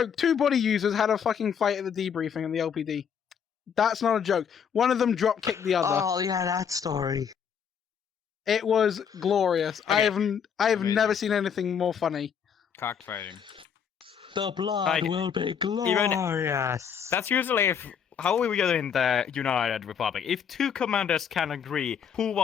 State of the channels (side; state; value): right; quieter; 7.5 dB